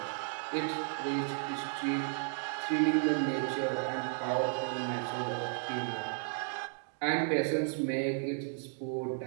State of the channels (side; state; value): left; silent; 55 dB below the other